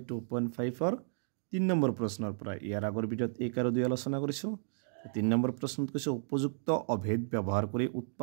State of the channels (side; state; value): left; silent; digital silence